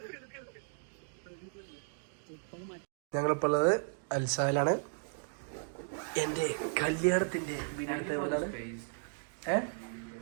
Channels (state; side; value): silent; left; digital silence